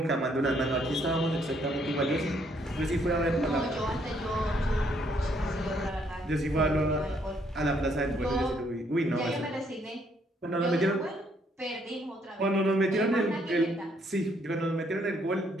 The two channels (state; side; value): normal; both; correlation 0.69